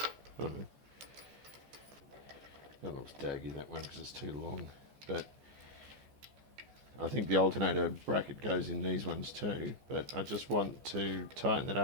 I don't know. That looks daggy, that one, because it's too long. But I think the alternator bracket goes in these ones too. But I just want to tighten it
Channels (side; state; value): left; late; 14 ms